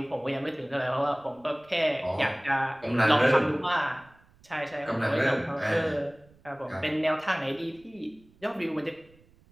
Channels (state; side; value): noise; right; rumble, 29 dB below the sound